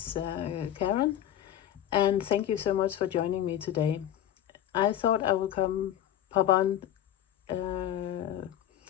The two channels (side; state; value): right; quieter; 11.4 dB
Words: Karen, and thank you so much for joining me today. I thought I would pop on